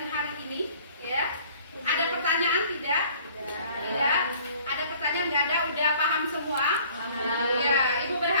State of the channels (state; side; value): inverted; both; correlation -0.54